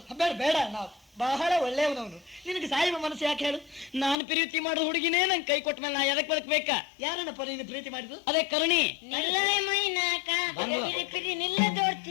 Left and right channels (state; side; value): drops out; right; at 4.2 s